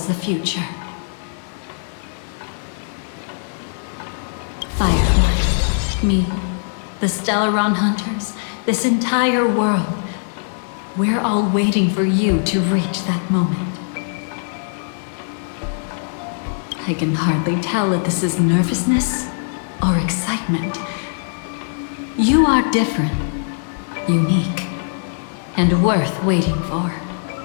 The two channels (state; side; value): silent; right; 65 dB below the other